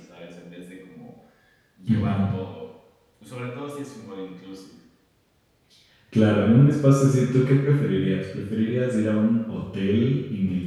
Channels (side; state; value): both; identical; correlation 1.00